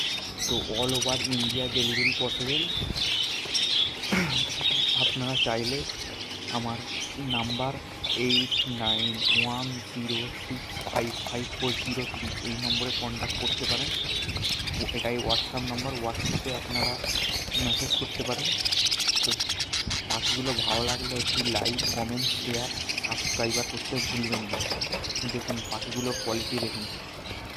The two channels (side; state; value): both; identical; correlation 1.00